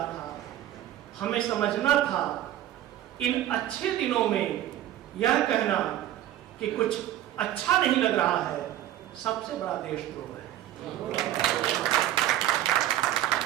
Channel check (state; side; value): quieter; left; 12.7 dB